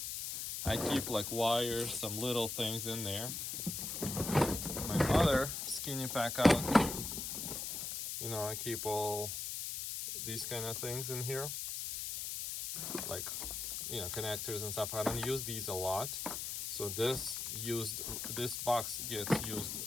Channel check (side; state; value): left; noise; hiss, 4 dB below the sound